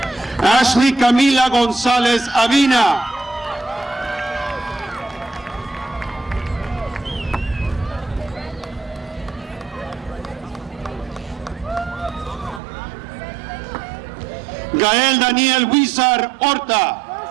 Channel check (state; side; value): drops out; left; at 12.6 s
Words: Ashley Camila González Avina, Gael Daniel Huizar Horta,